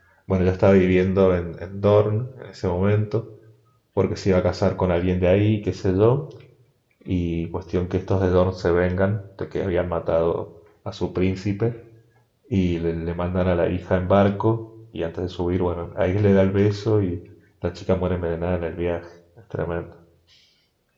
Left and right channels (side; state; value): both; identical; correlation 1.00